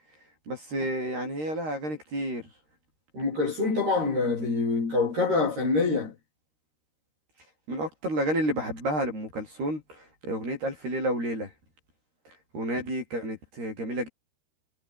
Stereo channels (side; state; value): left; late; 13 ms